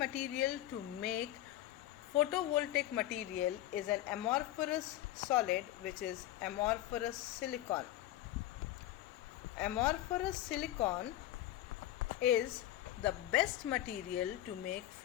to make photovoltaic material is an amorphous solid, which is amorphous silicon. Amorphous silicon is the best material to make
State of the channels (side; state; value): right; quieter; 14.0 dB